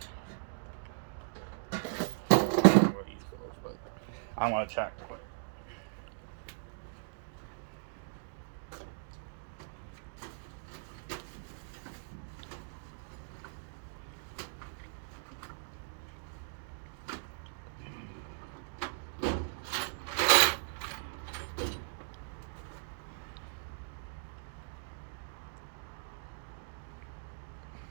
I want to check quick.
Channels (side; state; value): left; silent; digital silence